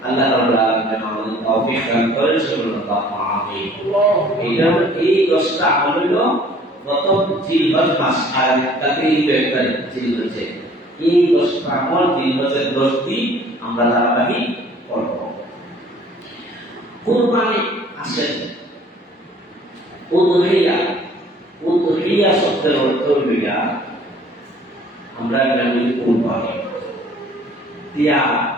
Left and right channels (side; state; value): both; normal; correlation 0.53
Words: আল্লাহ রাব্বুল আলামিন আমাদের তৌফিক দান করেন। সুবহানাল্লাহ, আমিন। এটা এই 10টা আমল হলো প্রথম জিলহজ মাস, আর তাতে একটা জিলহজে এই 10টা আমল জিলহজের 10 দিন আমরা ধারাবাহিক করব। কুরবানি আসেন উদহিয়া। উদহিয়া শব্দের অর্থ হইল আমরা বলি কুরবানি, ত্যাগ,